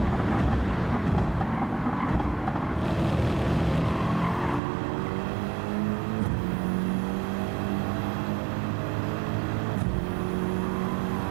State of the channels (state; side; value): drops out; left; at 4.6 s